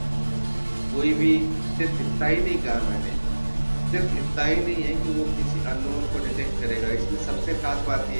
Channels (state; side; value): inverted; both; correlation -1.00